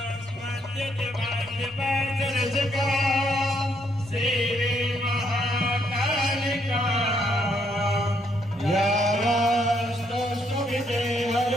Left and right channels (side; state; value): both; normal; correlation 0.72